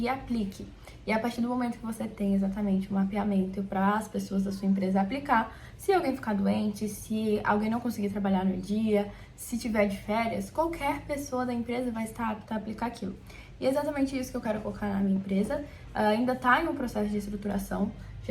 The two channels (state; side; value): identical; both; correlation 1.00